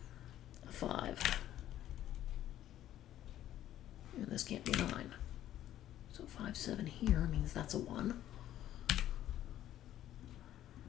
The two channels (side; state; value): right; quieter; 12.4 dB